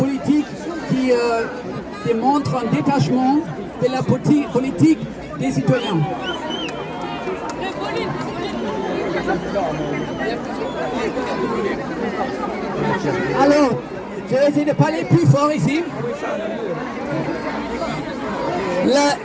qui démontrent un détachement de la politique des citoyens. Alors, je vais essayer de parler plus fort ici.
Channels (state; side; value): identical; both; correlation 1.00